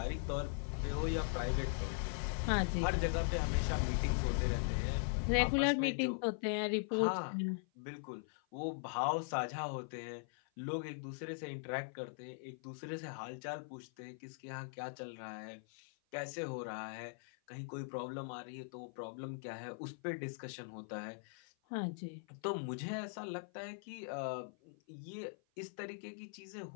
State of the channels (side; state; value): right; silent; 51 dB below the other